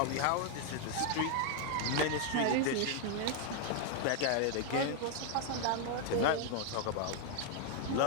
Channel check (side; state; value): both; different; correlation 0.00